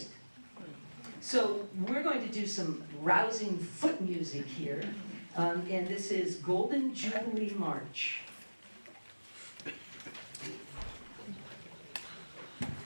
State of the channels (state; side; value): inverted; both; correlation -1.00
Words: So we're going to do some rousing foot music here, and this is Golden Jubilee March.